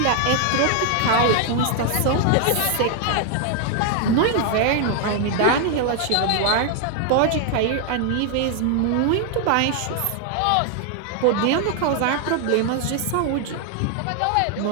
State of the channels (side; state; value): both; different; correlation 0.00